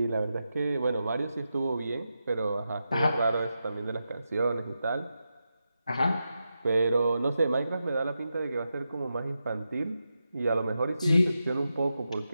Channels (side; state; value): both; inverted; correlation -0.88